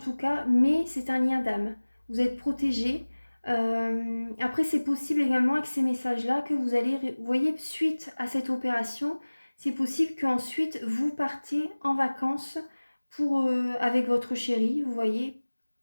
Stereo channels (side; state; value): both; inverted; correlation -1.00